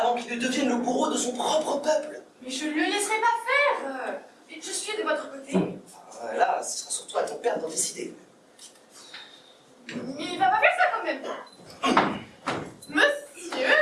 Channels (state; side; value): identical; both; correlation 1.00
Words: qu'il ne devienne le bourreau de son propre peuple. Mais je ne le laisserai pas faire. Je suis de votre côté. Là, ce sera surtout à ton père d'en décider. Il va pas faire ça quand même. Monsieur,